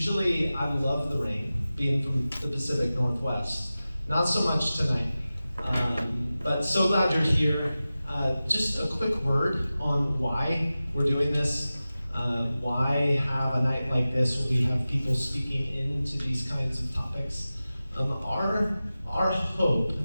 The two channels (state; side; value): inverted; both; correlation -0.96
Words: I love the rain, being from the Pacific Northwest. Not so much tonight, but so glad you're here. Just a quick word on why we're doing this. Why have a night like this where we have people speaking into these kinds of topics? Our hope